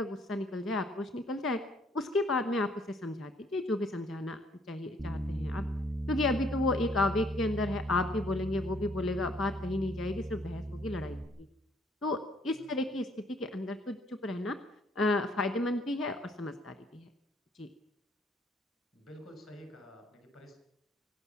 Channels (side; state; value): both; normal; correlation 0.65